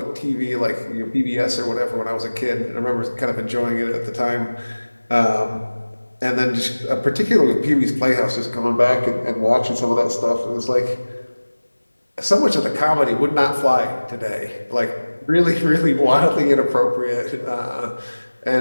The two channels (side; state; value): both; inverted; correlation -1.00